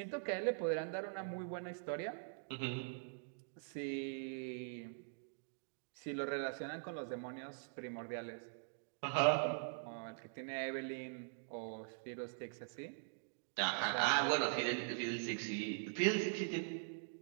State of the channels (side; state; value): left; silent; digital silence